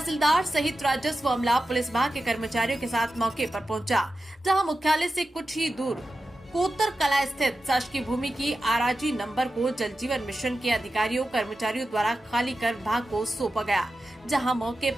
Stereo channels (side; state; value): both; normal; correlation 0.92